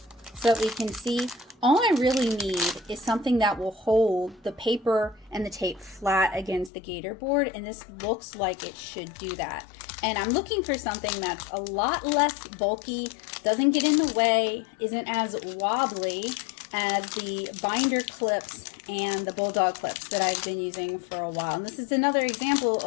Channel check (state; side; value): drops out; right; at 6.7 s